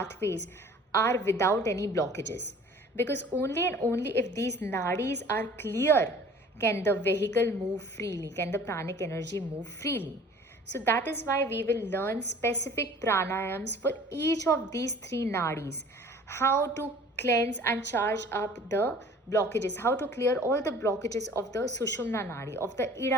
are without any blockages. Because only and only if these nadis are clear can the vehicle move freely, can the pranic energy move freely. So that is why we will learn specific pranayams for each of these 3 nadis. How to cleanse and charge up the blockages, how to clear all the blockages of the Sushumna nadi, of the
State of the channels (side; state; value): both; normal; correlation 0.49